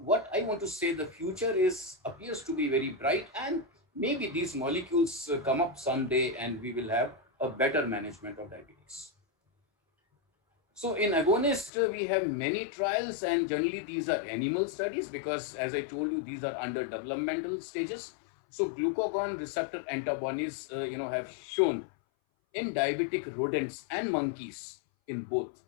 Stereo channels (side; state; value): right; drops out; at 11.7 s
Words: I want to say, the future appears to be very bright, and maybe these molecules come up someday and we will have a better management of diabetes. So in agonist, we have many trials, and generally these are animal studies because, as I told you, these are under developmental stages. So glucagon receptor antibodies, have shown in diabetic rodents and monkeys in both